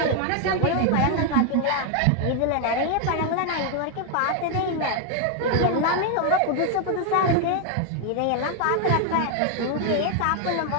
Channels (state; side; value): different; both; correlation 0.00